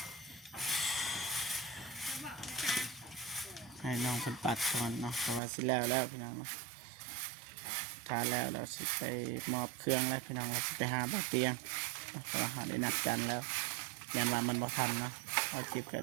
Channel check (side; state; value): left; drops out; at 5.4 s